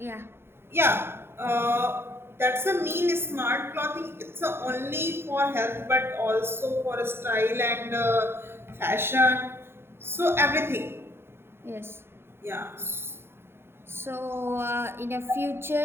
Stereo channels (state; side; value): late; left; 0.11 ms